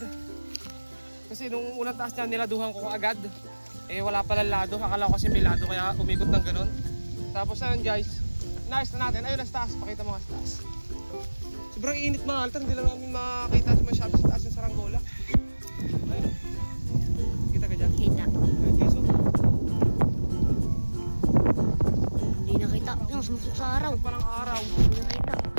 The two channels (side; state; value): both; inverted; correlation -1.00